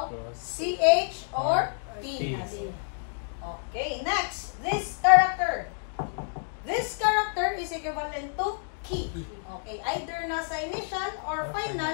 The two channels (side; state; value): right; silent; digital silence